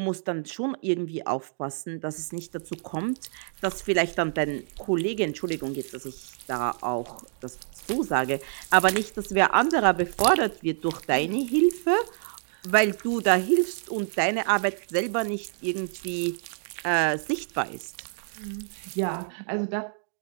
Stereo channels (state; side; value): silent; left; digital silence